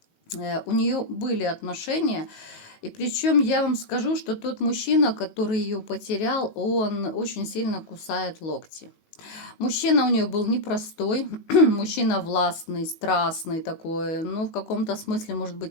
У нее были отношения, и причем я вам скажу, что тот мужчина, который ее потерял, он очень сильно кусает локти. Мужчина у нее был непростой, мужчина властный, страстный такой, ну, в каком-то смысле, может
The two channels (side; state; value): right; late; 18 ms